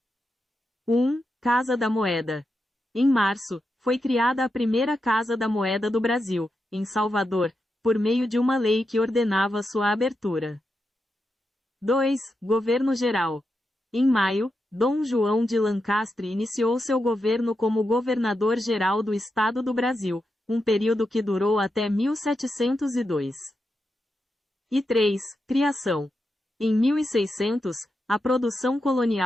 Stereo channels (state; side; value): normal; both; correlation 0.87